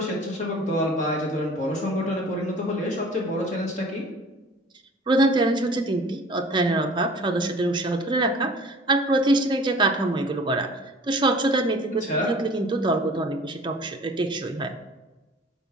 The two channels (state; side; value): normal; both; correlation 0.46